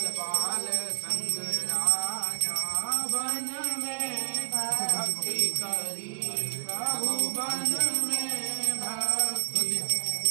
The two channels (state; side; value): silent; left; digital silence